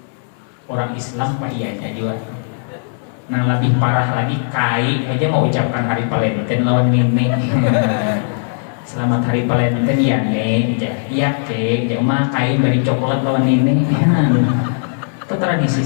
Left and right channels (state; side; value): silent; right; 66 dB below the other